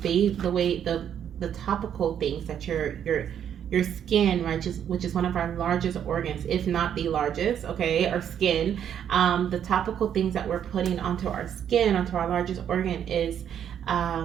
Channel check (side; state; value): left; quieter; 9.2 dB